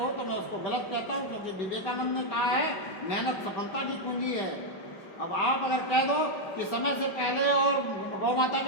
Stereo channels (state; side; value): late; right; 5.1 ms